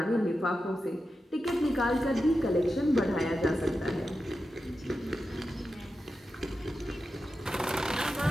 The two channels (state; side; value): normal; both; correlation 0.91